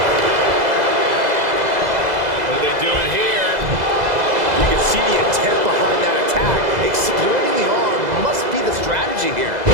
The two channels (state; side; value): late; left; 2.0 ms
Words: What are they doing here? You can see the intent behind that attack. Exploiting the arm must be the strategy here.